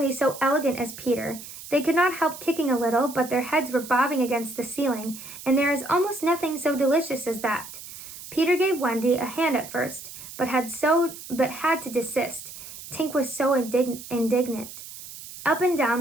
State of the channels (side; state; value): right; noise; hiss, 14 dB below the sound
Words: so elegant as Peter. They could not help kicking a little, but their heads were bobbing against the ceiling, and there is almost nothing so delicious as that. Peter gave Wendy a hand at first, but had to desist. Tink was so indignant. Up and down